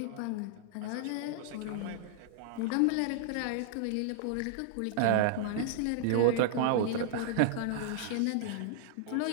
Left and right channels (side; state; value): both; different; correlation -0.01